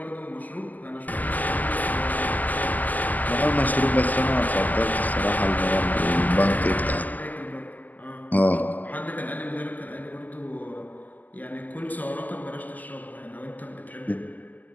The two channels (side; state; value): right; late; 0.082 ms